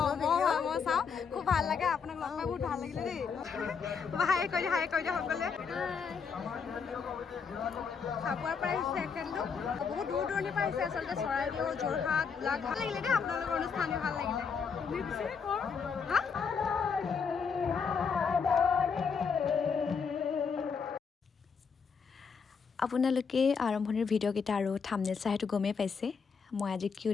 মই চাওঁ খুব ভাল লাগে আপোনাক লগ পাই বহুত ভাল লাগিলে দেই হাই কৰি দিয়া সকলোৱে চাবুৱাৰ পৰা আহিছে এখেতলোক বহুত দূৰ দূৰণিৰ পৰা আহিছে আচলতে চৰাইদেউ যোৰহাট গোলাঘাট ভাল লাগিলে দেই আপোনালোকৰ অনুষ্ঠান ভাল লাগিলে তুমি পিছে কৰ হা আপোনালোকে আৰম্ভণিৰ ভিডিঅ'কেইটা আৰু থাম্বনেইল চাই সেইটো গমেই পাইছে মই আজি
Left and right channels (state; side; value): quieter; right; 5.9 dB